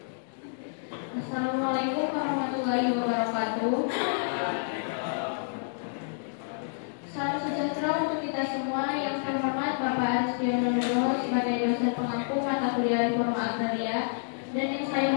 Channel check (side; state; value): right; silent; digital silence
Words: Assalamualaikum warahmatullahi wabarakatuh. Salam sejahtera untuk kita semua. Yang terhormat Bapak Arsdiono Nugroho sebagai dosen pengampu mata kuliah Reforma Agraria, dan yang saya